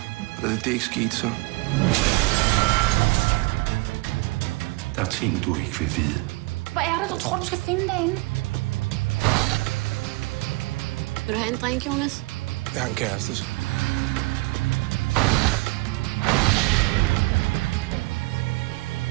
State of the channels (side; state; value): left; quieter; 24.0 dB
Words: og da det ikke skete, så... Der er ting, du ikke vil vide. Hvad er det, du tror, du skal finde derinde? Vil du have en drink, Jonas? Jeg har en kæreste, så...